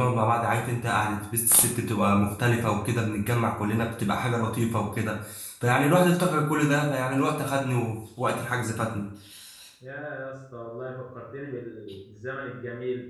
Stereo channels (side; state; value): both; identical; correlation 1.00